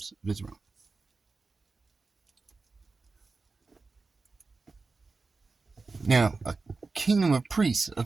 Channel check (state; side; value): quieter; left; 4.0 dB